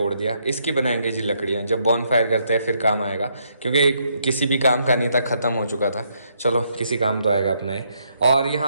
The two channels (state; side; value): inverted; both; correlation -0.74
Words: दिया, इसकी बनाएंगे जी लकड़ियाँ, जब बॉन फायर करते हैं फिर काम आएगा, क्योंकि किसी भी काम का नहीं था, ख़त्म हो चुका था। चलो किसी काम तो आएगा अपना ही। और